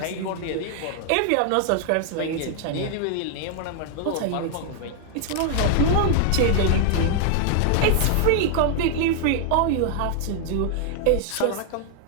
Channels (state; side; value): different; both; correlation 0.00